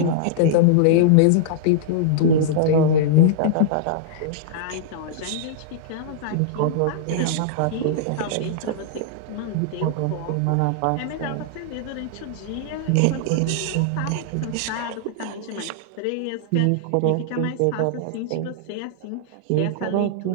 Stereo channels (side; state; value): both; different; correlation -0.01